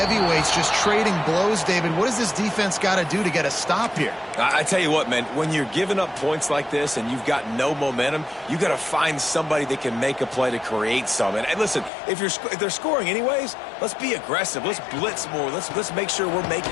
just trading blows, David. What does this defense got to do to get a stop here? I tell you what, man, when you're giving up points like this and you've got no momentum, you got to find somebody that can make a play to create some. And listen, if they're scoring anyways, let's be aggressive. Let's blitz more. Let's make sure we're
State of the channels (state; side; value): drops out; right; at 11.9 s